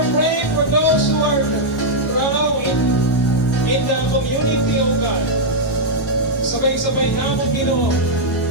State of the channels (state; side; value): normal; both; correlation -0.06